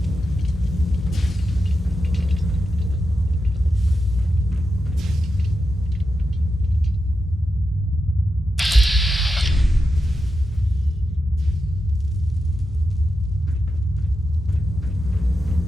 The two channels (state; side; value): normal; both; correlation 0.88